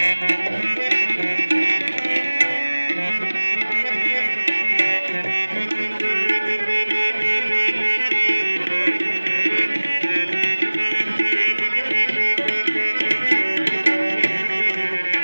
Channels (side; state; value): both; inverted; correlation -1.00